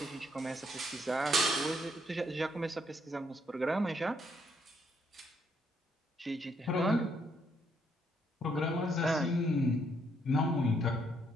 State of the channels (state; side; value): normal; both; correlation 0.72